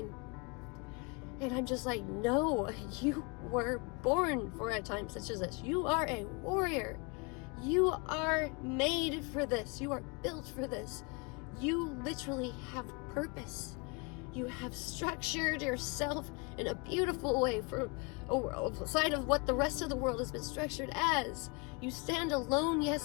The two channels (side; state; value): right; quieter; 30.6 dB